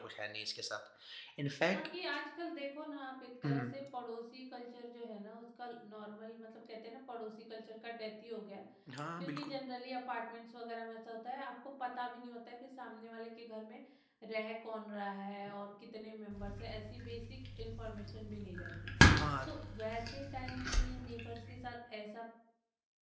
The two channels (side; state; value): both; identical; correlation 1.00